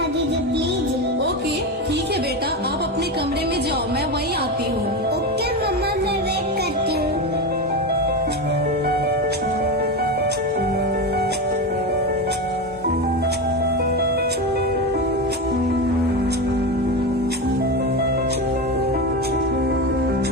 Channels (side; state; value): both; normal; correlation 0.18